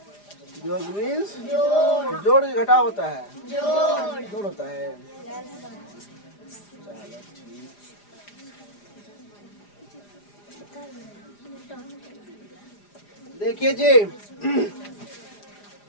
योग मीन्स जोड़ घटा होता है, जोड़ होता है। चलो ठीक। देखिए जी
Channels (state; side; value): late; right; 4.9 ms